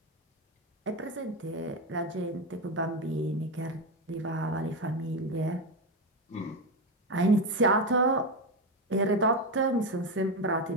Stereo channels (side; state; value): both; normal; correlation 0.13